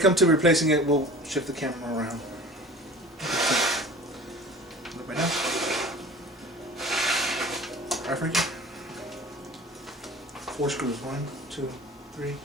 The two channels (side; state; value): both; normal; correlation 0.41